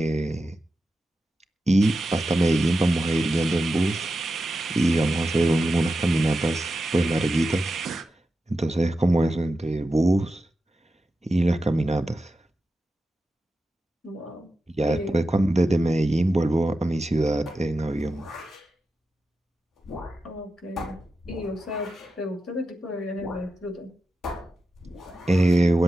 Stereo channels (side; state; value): both; normal; correlation 0.91